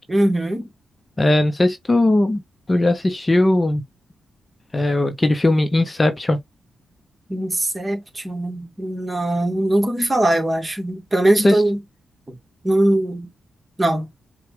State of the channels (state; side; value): normal; both; correlation 0.96